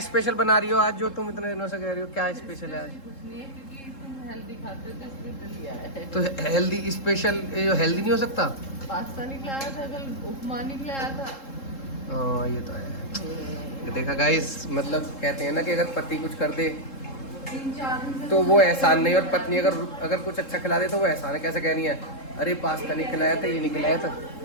स्पेशल बना रही हो आज, जो तुम इतने दिनों से कह रही हो? क्या स्पेशल है आज? कुछ नहीं है, क्योंकि तुम हेल्दी खाते हो, तो इसलिए तो लिया है। तो हेल्दी स्पेशल, ये हेल्दी नहीं हो सकता? पास्ता निकला आया था कल, उपमा निकला आया था। हाँ ये तो है। देखा गाइस, मतलब कहते हैं ना कि अगर पति कुछ कर दे 3-4 दिन से तो वो एहसान नहीं, और पत्नी अगर अगर कुछ अच्छा खिला दे तो वो एहसान है। कैसे कह रही है, अरे पास्ता नहीं खिलाया था, ये नहीं खिलाया था।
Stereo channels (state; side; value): late; right; 3.7 ms